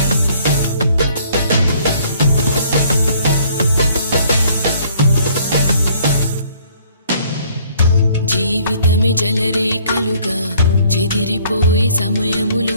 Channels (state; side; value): inverted; both; correlation -0.60